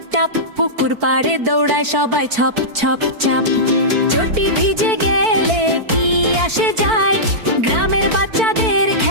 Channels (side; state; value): left; late; 4.5 ms